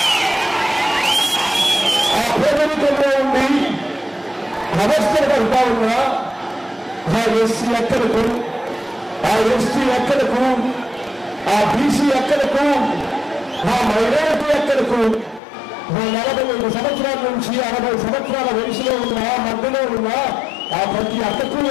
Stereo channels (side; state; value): right; drops out; at 15.4 s